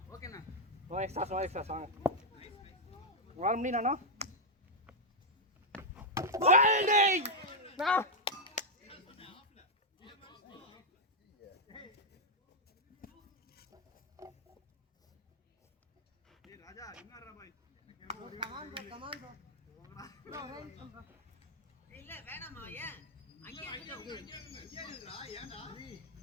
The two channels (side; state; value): both; normal; correlation -0.02